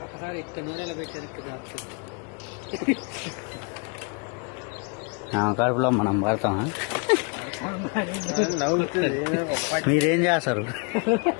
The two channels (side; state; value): right; quieter; 34.6 dB